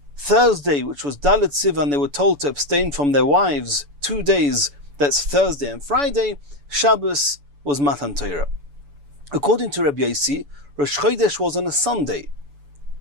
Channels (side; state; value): left; late; 7.0 ms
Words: Thursday, which was Dalet Sivan, they were told to abstain from their wives 2 days, that's Thursday and Friday. Shabbos was Matan Torah. According to Rabbi Yossi, Rosh Chodesh was on a Sunday,